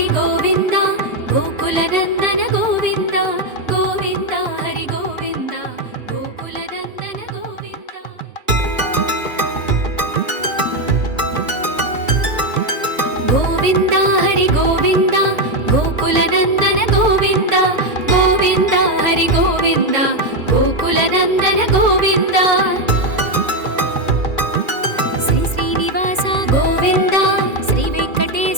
గోవింద గోకులనందన గోవింద గోవింద హరి గోవింద గోకులనందన గోవింద గోవింద హరి గోవింద గోకులనందన గోవింద గోవింద హరి గోవింద గోకులనందన గోవింద శ్రీ శ్రీనివాస గోవింద శ్రీ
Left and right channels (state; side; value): late; left; 2.3 ms